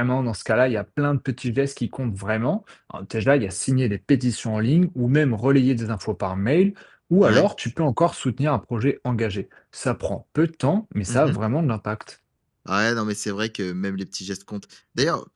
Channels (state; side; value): identical; both; correlation 1.00